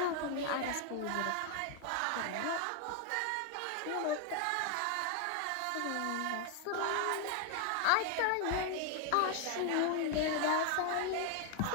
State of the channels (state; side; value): different; both; correlation 0.00